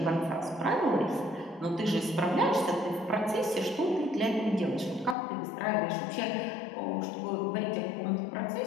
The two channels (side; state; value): right; drops out; at 5.2 s